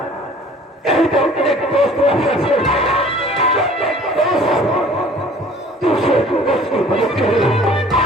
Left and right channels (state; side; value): normal; both; correlation 0.50